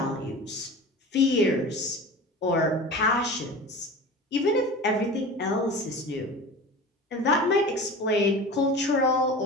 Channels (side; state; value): both; normal; correlation 0.34